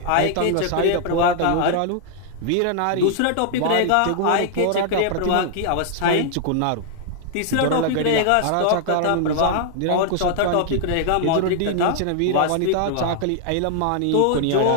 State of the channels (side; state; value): both; different; correlation 0.00